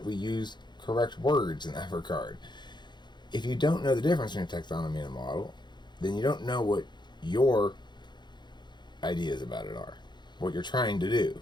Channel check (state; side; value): late; right; 0.21 ms